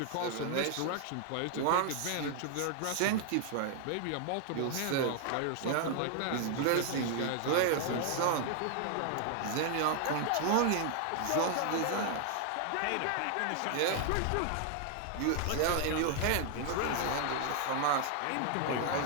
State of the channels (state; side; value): different; both; correlation 0.00